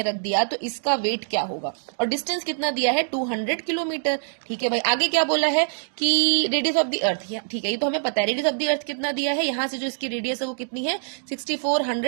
रख दिया तो इसका वेट क्या होगा, और डिस्टेंस कितना दिया है, 200 किलोमीटर। ठीक है भाई, आगे क्या बोला है कि रेडियस ऑफ द अर्थ, ठीक है, ये तो हमें पता है। रेडियस ऑफ द अर्थ कितना दिया है, यहाँ से जो इसकी रेडियस है वो कितनी है,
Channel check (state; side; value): silent; left; digital silence